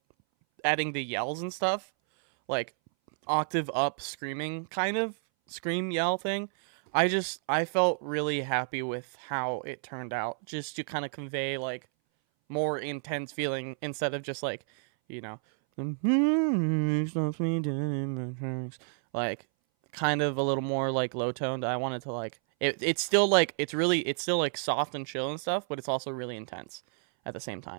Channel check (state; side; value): silent; left; 58 dB below the other